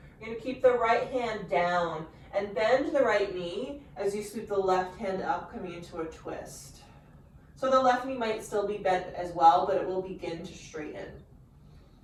You're going to keep the right hand down and bend the right knee as you sweep the left hand up, coming into a twist. So the left knee might still be bent as well, but it will begin to straighten.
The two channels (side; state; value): both; identical; correlation 1.00